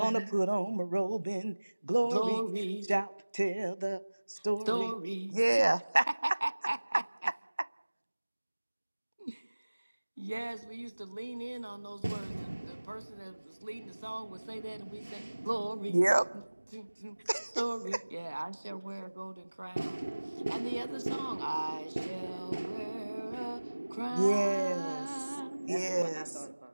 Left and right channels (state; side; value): inverted; both; correlation -1.00